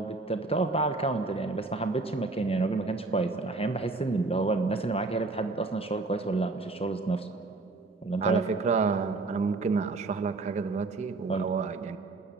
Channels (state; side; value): quieter; left; 3.5 dB